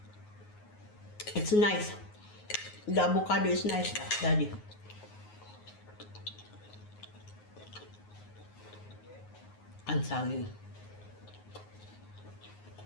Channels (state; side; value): late; right; 9.5 ms